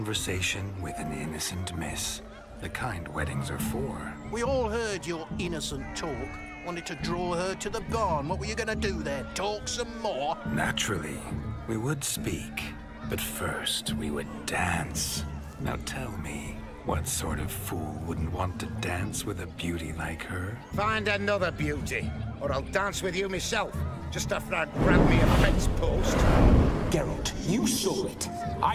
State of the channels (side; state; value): both; identical; correlation 1.00